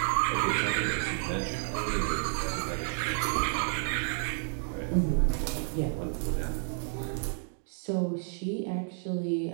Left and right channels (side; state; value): left; silent; 57 dB below the other